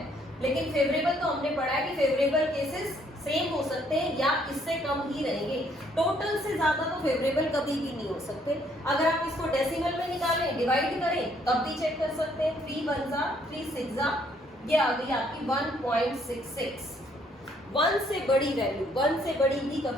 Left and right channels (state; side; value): normal; both; correlation 0.67